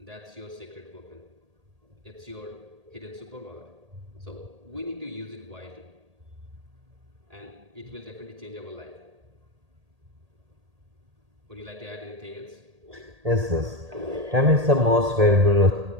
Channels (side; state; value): left; late; 1.8 ms